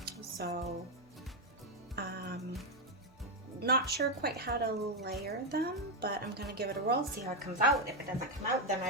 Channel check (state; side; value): normal; both; correlation 0.05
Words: So, not sure quite how to layer them, but I'm gonna give it a roll, see how it comes out. If it doesn't come out, then